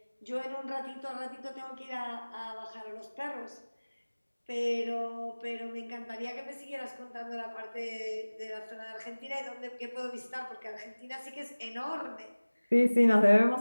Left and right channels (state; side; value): inverted; both; correlation -1.00